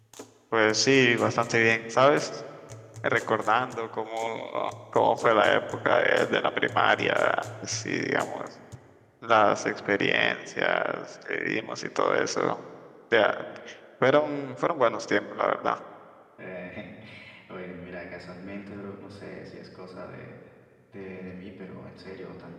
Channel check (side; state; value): both; identical; correlation 1.00